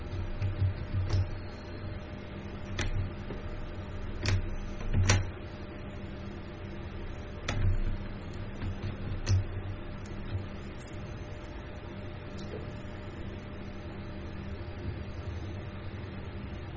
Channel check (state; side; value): identical; both; correlation 1.00